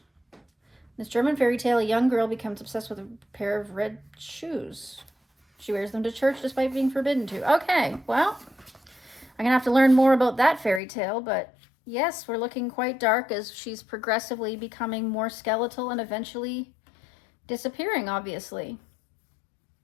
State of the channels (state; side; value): drops out; right; at 10.8 s